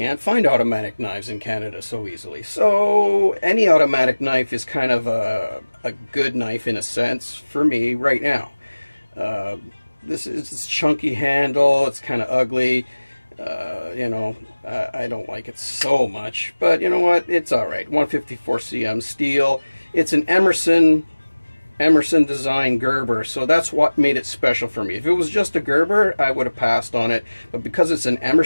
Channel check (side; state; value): both; inverted; correlation -1.00